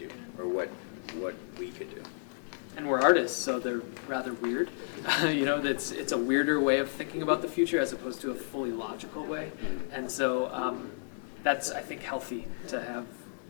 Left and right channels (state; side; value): silent; right; digital silence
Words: or what we could do. And we're artists, so they're rather weird. It's a weirder way of thinking about the future as opposed to a fully logical way. And so that's, I think, healthy to have